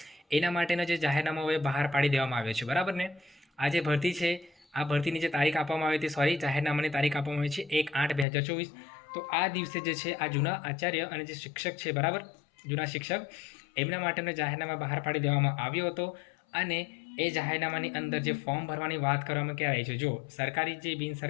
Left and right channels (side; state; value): right; drops out; at 8.2 s